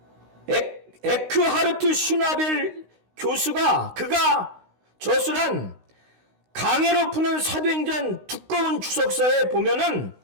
에크하르트 슈나벨 교수가 그가 저술한 강해로 푸는 사도행전 두꺼운 주석서에 보면은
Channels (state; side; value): late; left; 16 ms